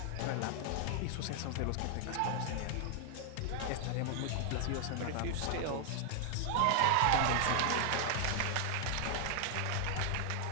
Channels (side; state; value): both; different; correlation 0.00